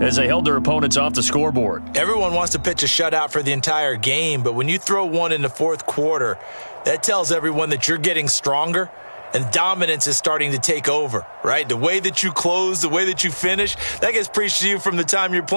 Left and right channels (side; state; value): both; inverted; correlation -1.00